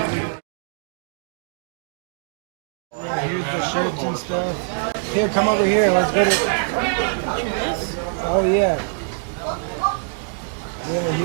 Yeah, here's the shirts and stuff. Here, come over here. Let's go to... Oh, yeah. Yeah,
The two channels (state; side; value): silent; left; digital silence